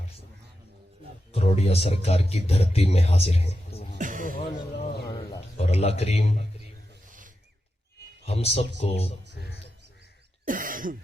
کروڑیا سرکار کی دھرتی میں حاضر ہیں اور اللہ کریم ہم سب کو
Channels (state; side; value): normal; both; correlation 0.89